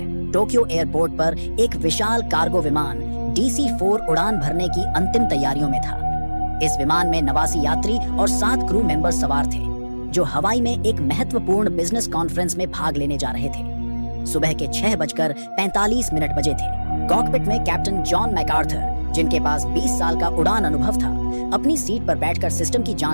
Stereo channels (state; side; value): inverted; both; correlation -1.00